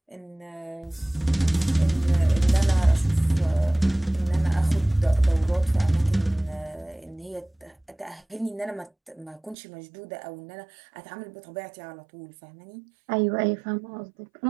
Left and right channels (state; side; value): drops out; left; at 9.6 s